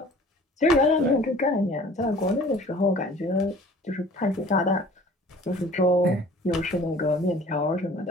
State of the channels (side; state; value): both; normal; correlation 0.48